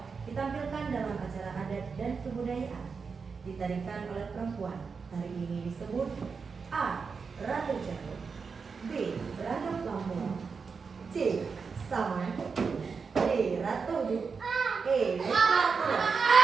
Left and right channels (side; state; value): left; quieter; 5.3 dB